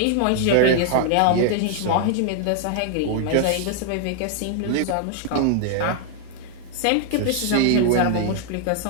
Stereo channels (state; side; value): different; both; correlation 0.00